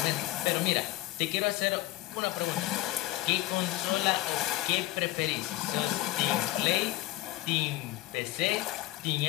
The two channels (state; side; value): quieter; right; 17.1 dB